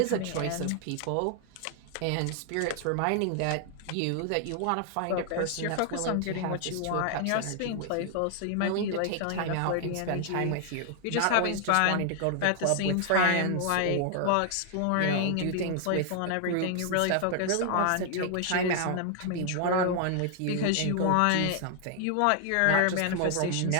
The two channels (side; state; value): both; different; correlation 0.00